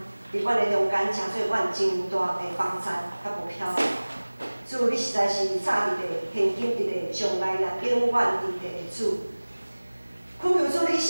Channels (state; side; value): inverted; both; correlation -1.00